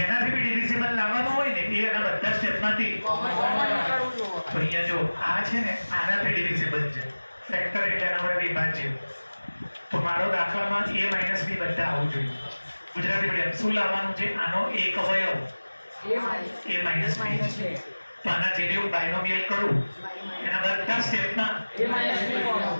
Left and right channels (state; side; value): inverted; both; correlation -1.00